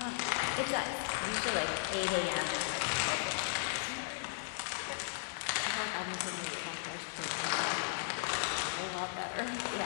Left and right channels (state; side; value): silent; right; digital silence